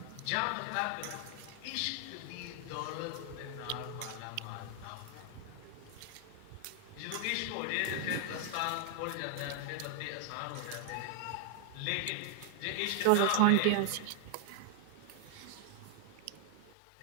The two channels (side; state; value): both; different; correlation 0.00